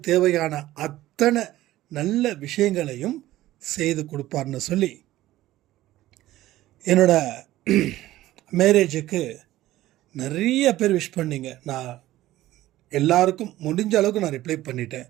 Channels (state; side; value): quieter; left; 15.4 dB